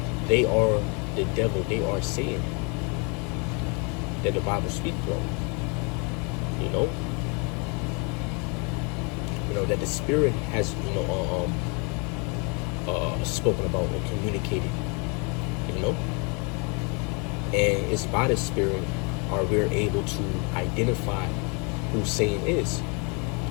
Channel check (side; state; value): right; quieter; 33.4 dB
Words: they are the devil, they are Satan that the Bible speaks of, that the spirit has, spoken about or communicated, and it's by the spirit are we're able to identify who Satan is.